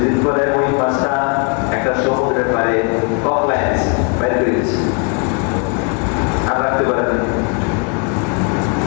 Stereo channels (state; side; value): quieter; right; 35.7 dB